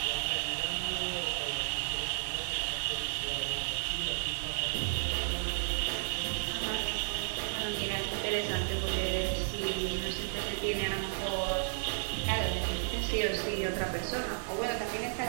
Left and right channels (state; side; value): silent; left; digital silence